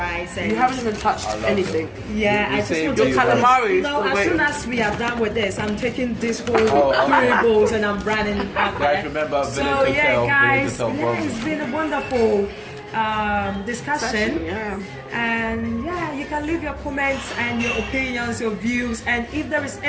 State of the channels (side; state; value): both; identical; correlation 1.00